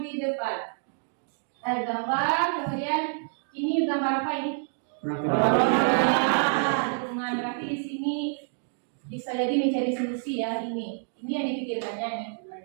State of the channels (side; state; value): left; silent; 60 dB below the other